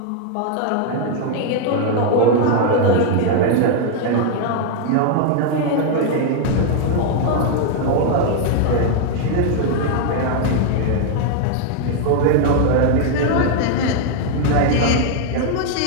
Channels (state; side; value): different; both; correlation 0.00